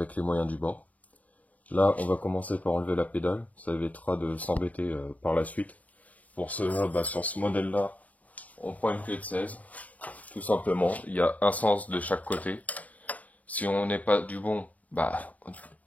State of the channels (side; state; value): right; late; 0.072 ms